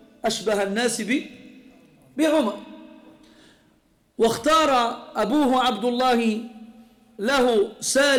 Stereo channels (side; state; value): both; identical; correlation 1.00